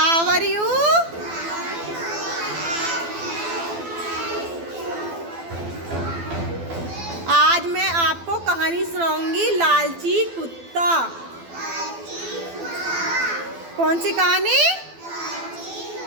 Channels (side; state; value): left; late; 12 ms